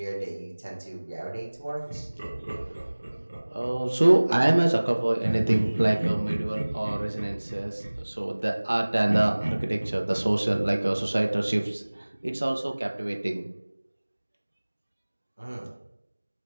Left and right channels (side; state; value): both; inverted; correlation -1.00